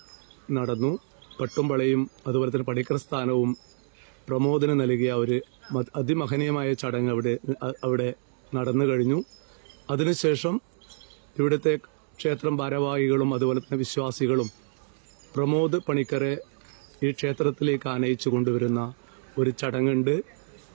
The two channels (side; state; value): left; silent; 60 dB below the other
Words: നടന്നു. പട്ടുംപളയും അതുപോലെ തന്നെ പണിക്കർ സ്ഥാനവും പ്രമോദിന് നൽകിയ ഒരു അതിമഹനീയമായ ചടങ്ങ് അവിടെ നടന്നു കഴിഞ്ഞു. അതിനുശേഷം ഇവിടുത്തെ ക്ഷേത്രം ഭാരവാഹികളും അതുപോലെ തന്നെ വിശ്വാസികളും പ്രമോദ് പണിക്കരെ ഈ ക്ഷേത്രത്തിലേക്ക് ആനയിച്ചു കൊണ്ടുവരുന്ന ഒരു ചടങ്ങുണ്ട്.